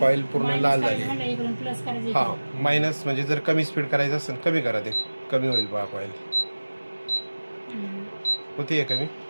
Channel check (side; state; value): both; inverted; correlation -1.00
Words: कॉईल पूर्ण लाल झाली. हा मायनस म्हणजे जर कमी स्पीड करायचं असेल कमी करा, ते कमी होईल बघा कॉईल. होती कमी.